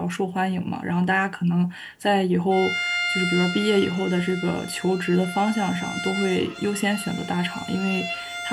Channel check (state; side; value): identical; both; correlation 1.00